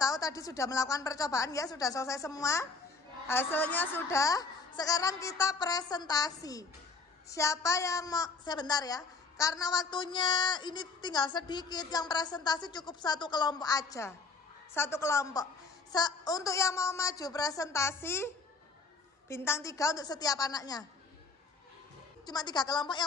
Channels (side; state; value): right; quieter; 4.2 dB